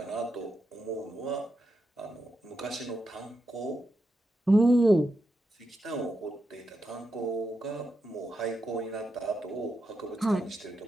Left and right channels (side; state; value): both; normal; correlation 0.86